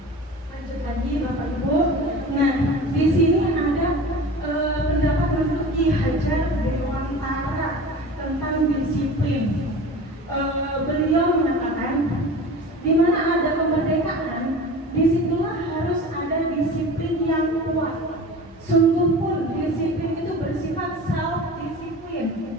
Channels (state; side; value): normal; both; correlation 0.36